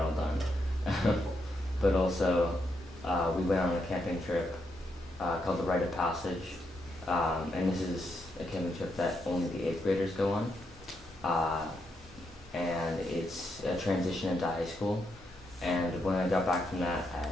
done. But also, we went on a camping trip called the Rite of Passage, and this is a camping trip that only the 8th graders go on, and it's a transition into high school. And when I got back from that,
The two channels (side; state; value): both; normal; correlation 0.80